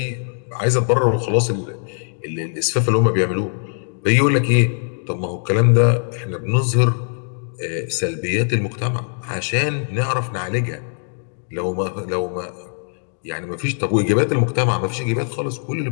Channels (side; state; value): right; silent; 58 dB below the other